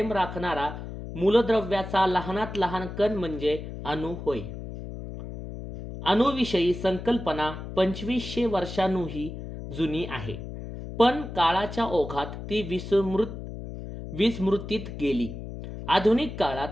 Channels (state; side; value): noise; left; hum, 9 dB below the sound